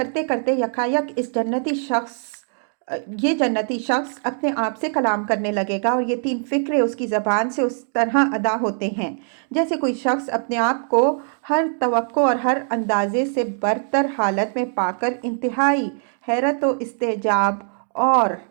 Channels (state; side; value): silent; left; 64 dB below the other